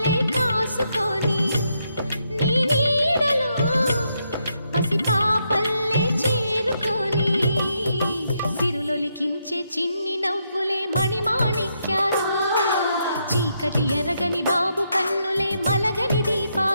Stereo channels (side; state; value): both; inverted; correlation -0.79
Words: కాసుకొని, నీ నీడలో పసిపాపల్లే చేరుకొని, సిరులొలికించే చిన్ని నవ్వులే మణిమాణిక్యాలు, చీకటి ఎరగని బాబు కన్నులే మలగని